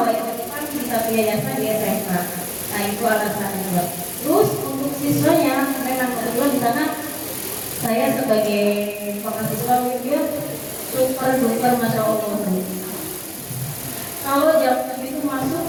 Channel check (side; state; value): both; identical; correlation 1.00